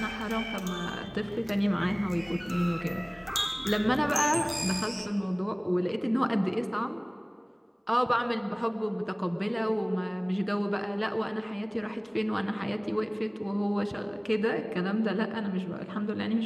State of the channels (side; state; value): both; identical; correlation 1.00